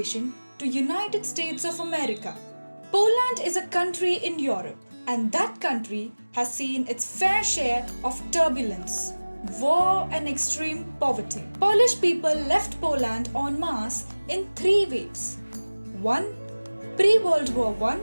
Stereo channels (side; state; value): both; inverted; correlation -1.00